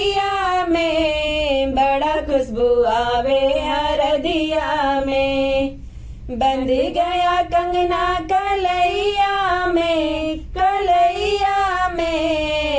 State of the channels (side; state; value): both; identical; correlation 1.00